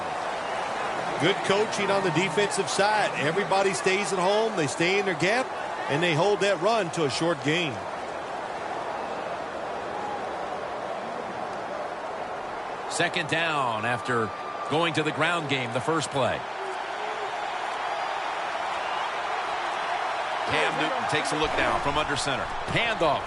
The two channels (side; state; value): both; identical; correlation 1.00